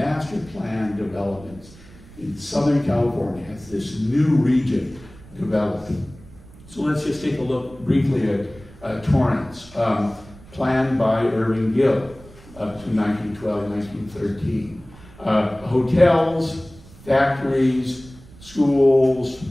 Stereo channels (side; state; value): right; noise; rumble, 21 dB below the sound